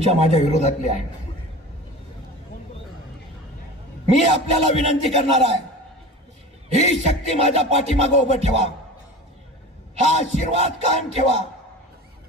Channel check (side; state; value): both; normal; correlation 0.35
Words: माझ्या विरोधातले आहेत. मी आपल्याला विनंती करणार आहे, ही शक्ती माझ्या पाठीमागे उभं ठेवा, हा आशीर्वाद कायम ठेवा.